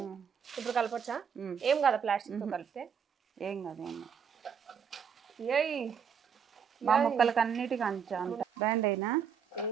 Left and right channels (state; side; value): quieter; left; 7.1 dB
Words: ఇప్పుడు కలపొచ్చా? ఏం కదా ప్లాస్టిక్ తో కలిపితే ఏం కాదు. ఏయ్ మా ముక్కలకి అన్నిటికీ అంత బ్యాండ్ అయినా